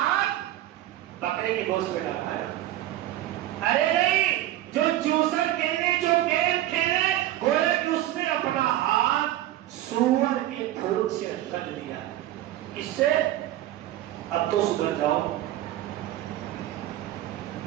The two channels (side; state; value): left; quieter; 14.1 dB